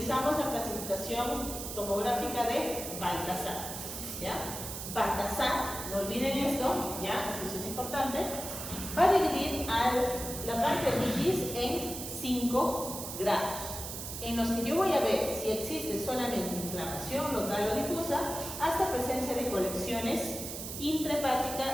la clasificación tomográfica de Baltasar, ¿ya? Baltasar, no olviden esto, ¿ya? Eso es importante. Va a dividir la pancreatitis en 5 grados, en los que yo voy a ver si existe solamente inflamación local o difusa, hasta presencia de colecciones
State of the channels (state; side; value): noise; right; hiss, 7 dB below the sound